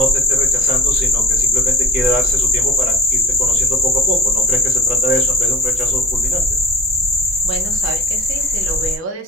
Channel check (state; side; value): normal; both; correlation 0.44